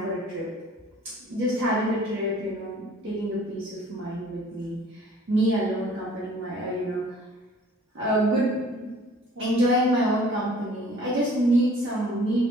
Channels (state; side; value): normal; both; correlation 0.52